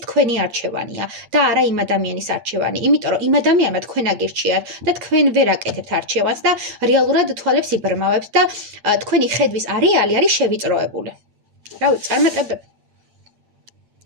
თქვენი არჩევანია და არა იმ ადამიანის არჩევანი, იმიტომ რომ იმ ადამიანმა თქვენ აგირჩიათ და თქვენ ვერ აკეთებთ არჩევანს და რეალურად თვალებს იბრმავებთ და თქვენი ხედვის არეალი არის შევიწროებული. რა ვიცი, წარმატებები.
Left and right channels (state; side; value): late; left; 8.7 ms